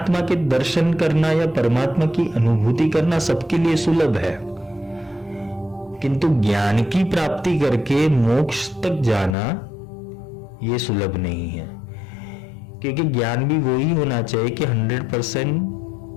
के दर्शन करना या परमात्मा की अनुभूति करना सबके लिए सुलभ है, किंतु ज्ञान की प्राप्ति करके मोक्ष तक जाना यह सुलभ नहीं है। क्योंकि ज्ञान भी वही होना चाहिए कि 100%,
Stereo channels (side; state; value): right; drops out; at 9.3 s